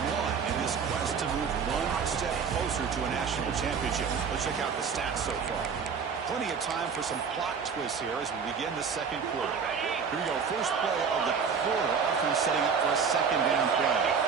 one in this quest to move one step closer to a national championship. Let's check out the stats so far. Plenty of time for some plot twists here as we begin the second quarter. Here we go. First play of the quarter. Offense setting up for a second down play.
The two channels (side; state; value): left; quieter; 6.1 dB